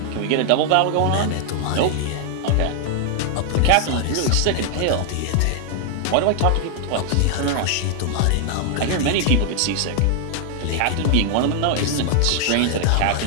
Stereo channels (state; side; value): different; both; correlation 0.00